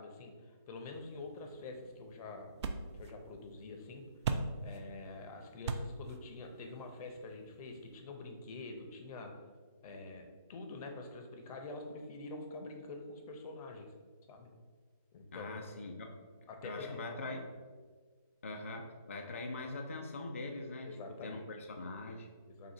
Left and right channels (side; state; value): both; inverted; correlation -0.57